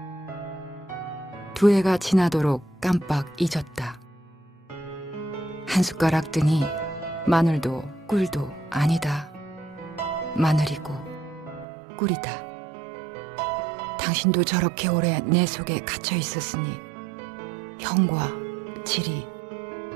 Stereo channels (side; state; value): left; drops out; at 11.7 s